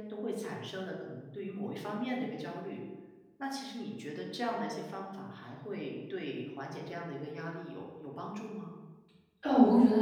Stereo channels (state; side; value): identical; both; correlation 1.00